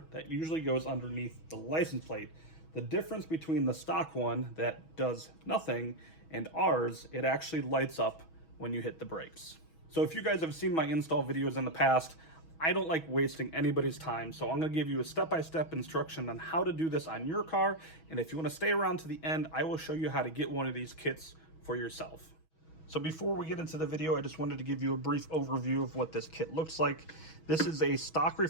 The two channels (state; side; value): late; right; 6.2 ms